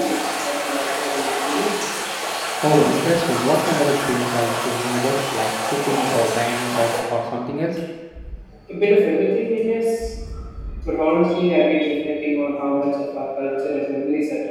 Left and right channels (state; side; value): identical; both; correlation 1.00